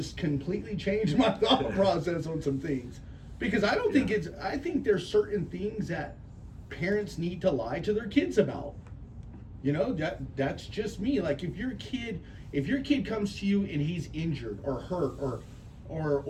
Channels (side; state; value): both; identical; correlation 1.00